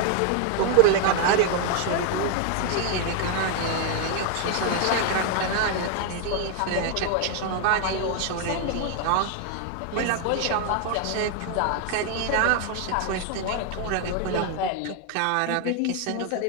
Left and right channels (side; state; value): both; different; correlation 0.00